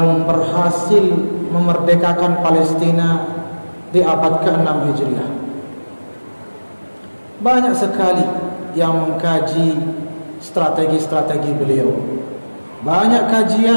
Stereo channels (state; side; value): inverted; both; correlation -1.00